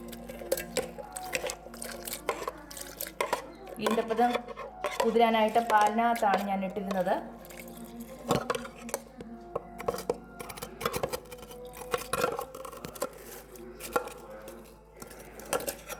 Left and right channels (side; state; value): both; identical; correlation 1.00